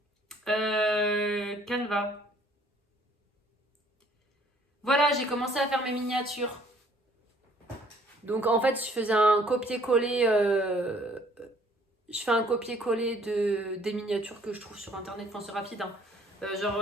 Canva. Voilà, j'ai commencé à faire mes miniatures. Donc en fait, je faisais un copier-coller. Je fais un copier-coller des miniatures que je trouve sur internet. Enfin, c'est rapide. Hein.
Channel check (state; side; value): normal; both; correlation 0.60